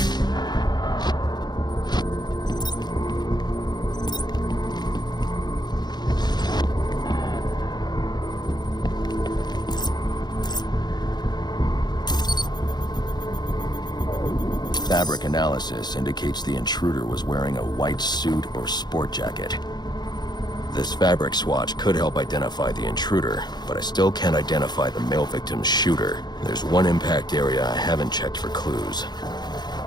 Fabric analysis indicates the intruder was wearing a white suit or sport jacket. This fabric swatch could help identify the intruder, but I still can't identify the male victim's shooter. There's one impact area I haven't checked for clues.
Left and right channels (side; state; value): right; late; 0.20 ms